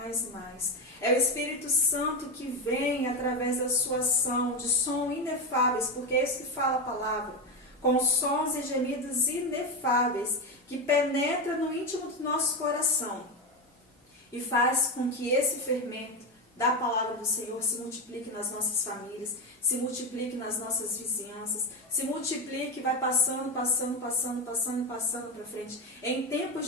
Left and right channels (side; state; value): both; normal; correlation 0.14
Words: É o Espírito Santo que vem através da sua ação, de som inefáveis, porque é isso que fala a palavra, com sons e gemidos inefáveis, que penetra no íntimo do nosso coração e faz com que esse fermento da palavra do Senhor se multiplique nas nossas famílias, se multiplique nas nossas vizinhanças, se multiplique e vai passando para frente. Em tempos